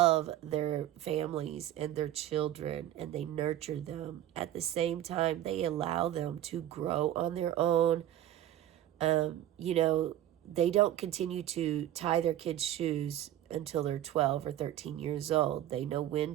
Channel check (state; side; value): quieter; left; 12.5 dB